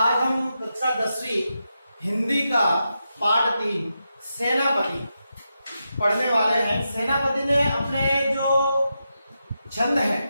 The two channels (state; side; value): inverted; both; correlation -0.87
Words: हम कक्षा 10वीं हिंदी का पाठ 3 सेनापति पढ़ने वाले हैं। सेनापति ने अपने जो छंद है